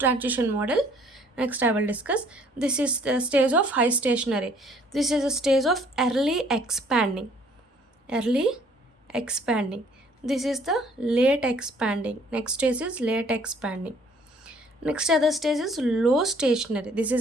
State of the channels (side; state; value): both; normal; correlation 0.59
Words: model. Next I will discuss. This is the stage of high stationary. This is a stage of early expanding. Early expanding. This is the late expanding. Next stage is late expanding. Next other stage is low stationary. This is